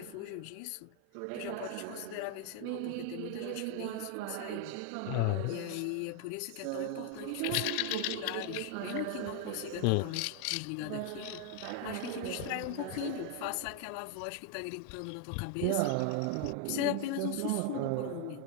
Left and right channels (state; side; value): different; both; correlation 0.00